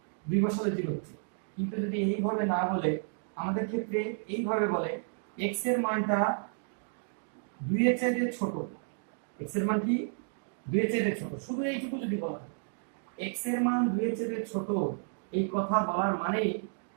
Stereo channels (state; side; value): silent; left; digital silence